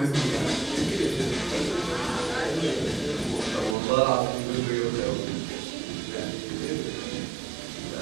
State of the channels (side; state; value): left; drops out; at 3.8 s